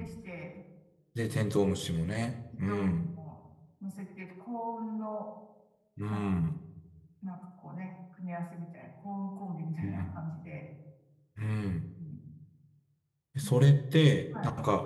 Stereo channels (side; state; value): both; identical; correlation 1.00